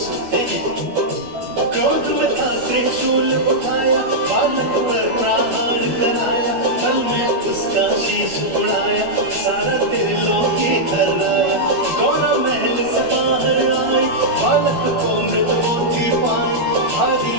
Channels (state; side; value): late; left; 12 ms